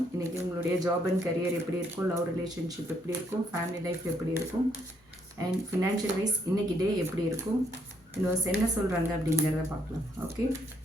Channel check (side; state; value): both; normal; correlation 0.72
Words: இன்றைக்கி உங்களுடைய ஜாப் அண்ட் கரியர் எப்படி இருக்கும், லவ் ரிலேஷன்ஷிப் எப்படி இருக்கும், ஃபேமிலி லைஃப் எப்படி இருக்கும், அண்ட் ஃபினான்ஷியல் வைஸ் இன்றைக்கி டே எப்படி இருக்கும், யூனிவர்ஸ் என்ன சொல்கிறாங்க அப்படிங்கிறத பார்க்கலாம். Okay,